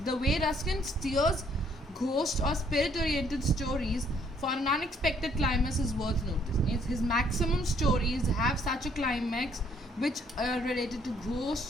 The way Ruskin steers ghost or spirit-oriented stories for an unexpected climax is worth noticing. His maximum stories have such a climax which are related to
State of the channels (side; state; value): both; normal; correlation 0.66